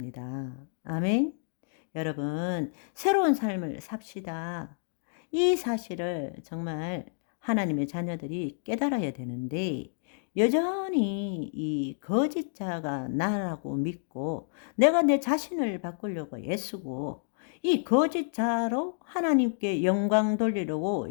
아멘. 여러분, 새로운 삶을 삽시다. 이 사실을 정말 하나님의 자녀들이 깨달아야 되는데, 여전히 이 거짓자가 나라고 믿고 내가 내 자신을 바꾸려고 애쓰고 이 거짓자로 하나님께 영광 돌리려고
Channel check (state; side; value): silent; right; digital silence